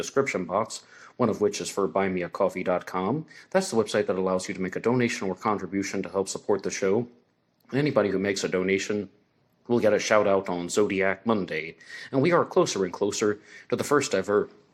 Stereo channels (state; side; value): identical; both; correlation 1.00